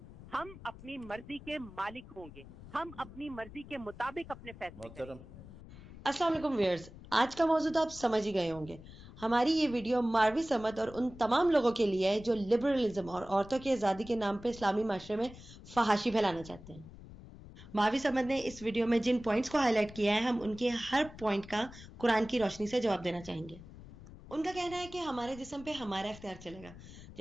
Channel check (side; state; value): left; noise; rumble, 17 dB below the sound